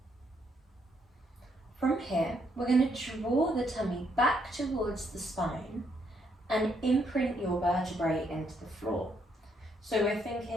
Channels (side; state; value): both; normal; correlation 0.73